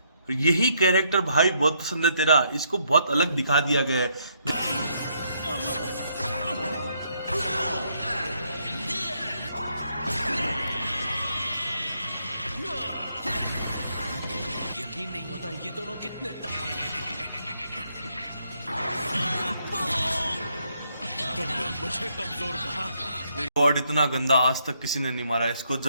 यही कैरेक्टर भाई बहुत पसंद है तेरा, इसको बहुत अलग दिखा दिया गया है। यकीन नहीं होता ये दोनों कितने तुमने मुझे कमजोर कहा। गॉड, इतना गंदा आज तक किसी ने नहीं मारा इसको।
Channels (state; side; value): inverted; both; correlation -0.73